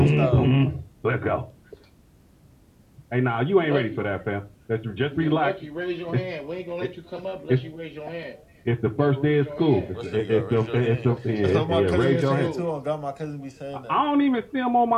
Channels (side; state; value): both; identical; correlation 1.00